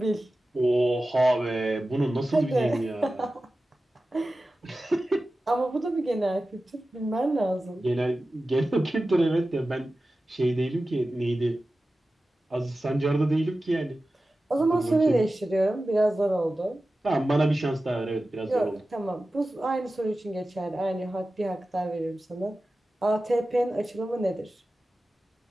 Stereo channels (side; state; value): both; normal; correlation 0.95